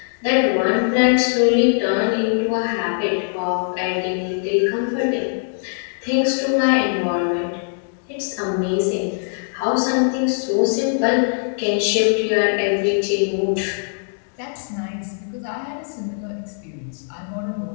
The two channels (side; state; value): right; silent; digital silence